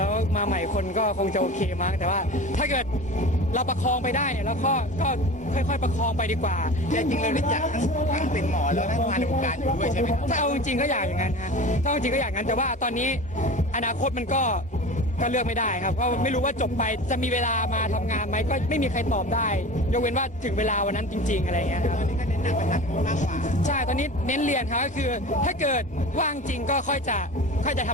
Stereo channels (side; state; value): both; normal; correlation 0.35